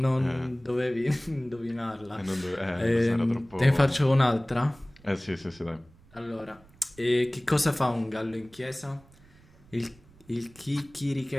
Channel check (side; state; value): right; noise; rumble, 27 dB below the sound